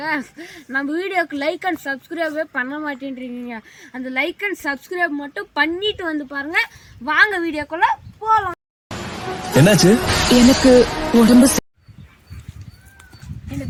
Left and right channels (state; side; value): identical; both; correlation 1.00